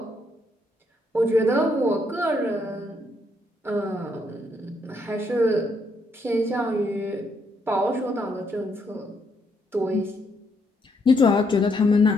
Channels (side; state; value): both; normal; correlation 0.74